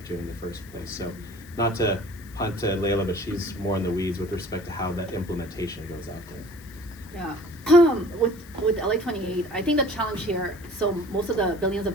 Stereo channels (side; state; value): left; noise; hiss, 23 dB below the sound